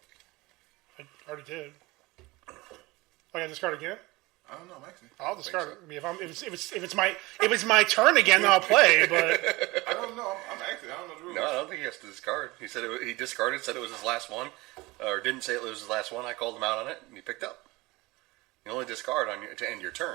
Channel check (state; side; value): quieter; left; 21.8 dB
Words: I already did. Oh, I gotta discard again? I don't know, I'm actually. I'll discard it. I mean, if it's my turn again, then I'll play. But I don't know. I'm actually. I don't know the rules. No, I don't think he has to discard. He said he discarded, said it was his last one, or didn't say it was his last one. I called him out on it, and he picked up. You only discard to end your